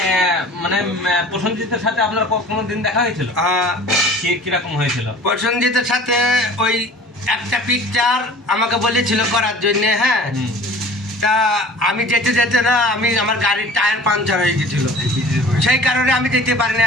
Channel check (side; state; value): both; normal; correlation 0.45